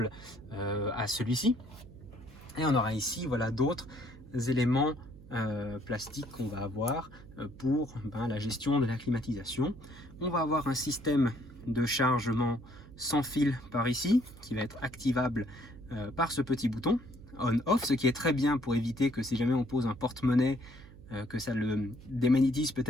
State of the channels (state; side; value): noise; right; hum, 19 dB below the sound